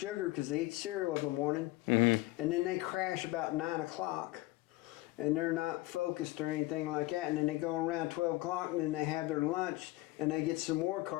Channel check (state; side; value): quieter; right; 19.1 dB